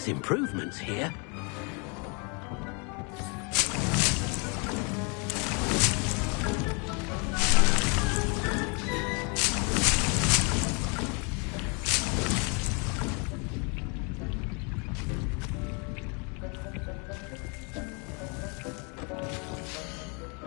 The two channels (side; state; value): right; quieter; 33.9 dB